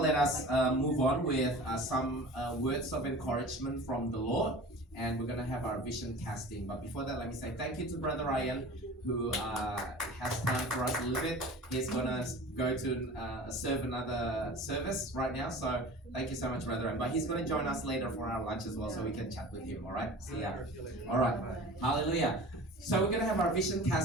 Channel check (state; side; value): normal; both; correlation 0.39